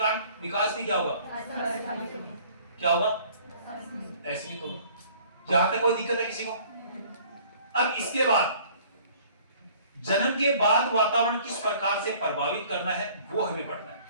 विकास भी क्या होगा? क्या होगा? असीमित होगा। यहां तक कोई दिक्कत है किसी को? अब इसके बाद जन्म के बाद वातावरण किस प्रकार से प्रभावित करना है वो हमें पढ़ना है।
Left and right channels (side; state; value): both; inverted; correlation -0.53